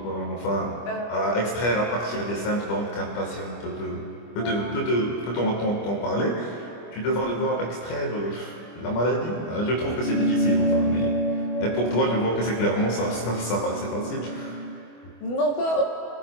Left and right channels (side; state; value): right; late; 25 ms